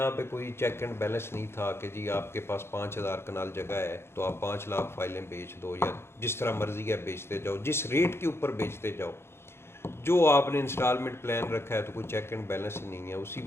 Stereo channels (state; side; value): late; right; 0.12 ms